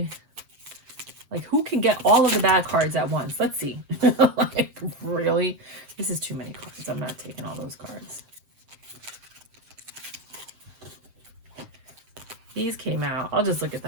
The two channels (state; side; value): late; left; 7.6 ms